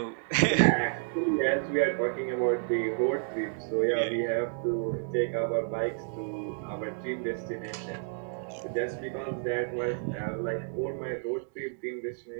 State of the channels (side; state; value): left; silent; digital silence